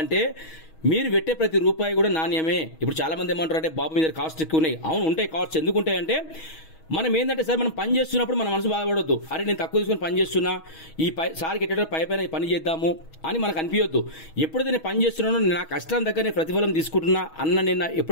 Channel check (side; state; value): right; late; 6.3 ms